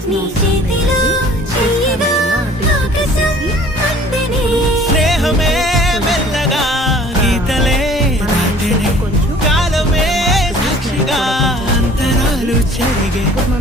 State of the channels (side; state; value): both; normal; correlation 0.51